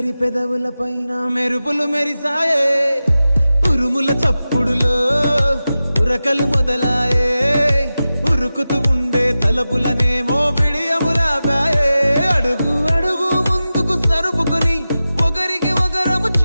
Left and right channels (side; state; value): both; inverted; correlation -0.94